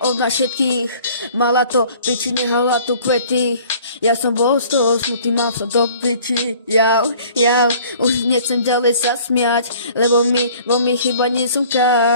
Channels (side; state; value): both; inverted; correlation -0.51